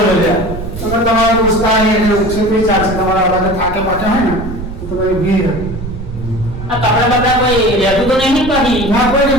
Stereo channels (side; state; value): right; noise; rumble, 9 dB below the sound